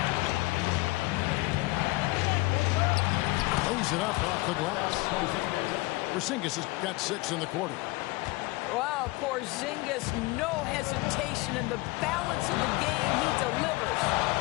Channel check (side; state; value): right; quieter; 22.3 dB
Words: Lays it up off the glass. Porzingis has got 6 in the quarter. Wow, Porzingis, no hesitation in the balance of the game. He delivers.